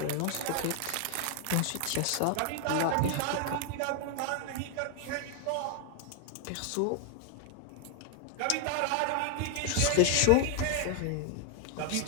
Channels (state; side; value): different; both; correlation 0.00